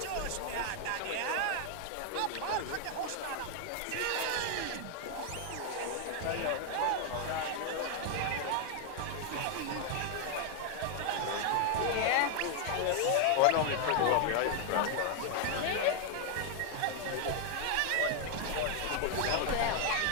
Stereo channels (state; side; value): different; both; correlation 0.00